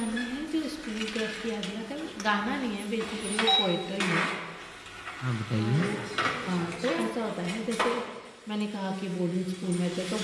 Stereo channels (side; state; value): both; identical; correlation 1.00